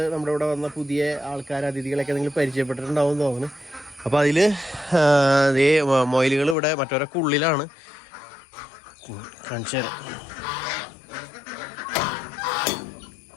നമ്മുടെ ഇവിടെ വന്ന പുതിയ ആൾക്കാർ അതിഥികളൊക്കെ നിങ്ങൾ പരിചയപ്പെട്ടിട്ടുണ്ടാവും എന്ന് തോന്നുന്നു. അപ്പോൾ അതിൽ മൊയിലുകൾ ഇവിടെ മറ്റവരൊക്കെ ഉള്ളിലാണ്. കാണിച്ചു തരാം.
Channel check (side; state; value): right; drops out; at 6.6 s